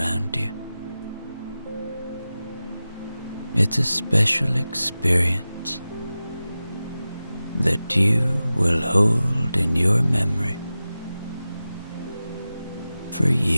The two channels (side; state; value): both; inverted; correlation -0.95